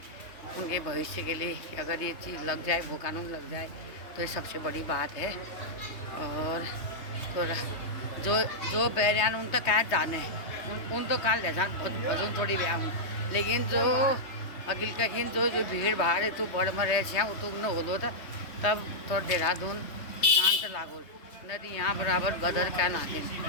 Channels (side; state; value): right; late; 3.2 ms